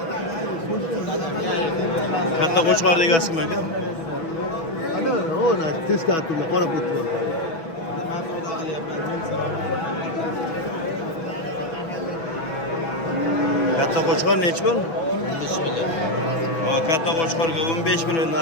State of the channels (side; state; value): right; late; 6.1 ms